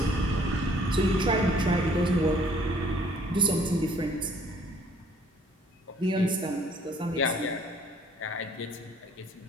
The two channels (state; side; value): normal; both; correlation 0.58